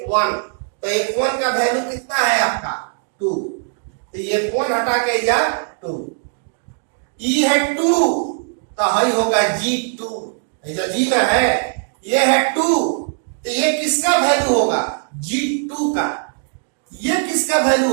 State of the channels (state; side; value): silent; left; 63 dB below the other